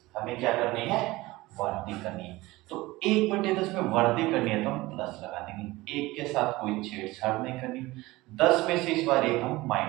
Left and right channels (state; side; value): quieter; left; 19.9 dB